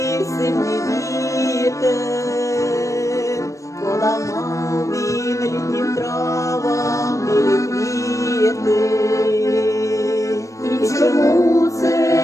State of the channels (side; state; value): right; late; 0.15 ms